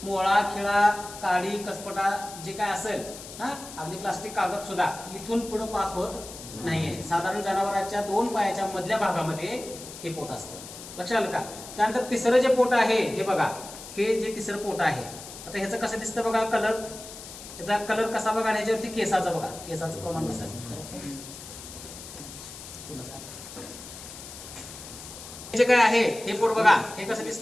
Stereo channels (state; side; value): noise; left; hiss, 13 dB below the sound